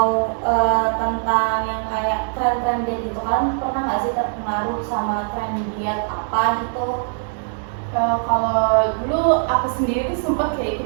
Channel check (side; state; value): left; silent; digital silence